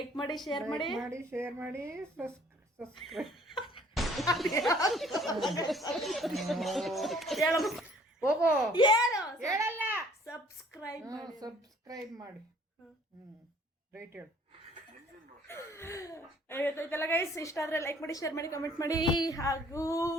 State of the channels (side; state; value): both; normal; correlation 0.57